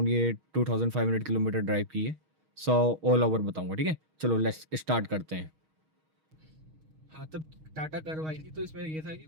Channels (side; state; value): left; late; 6.4 ms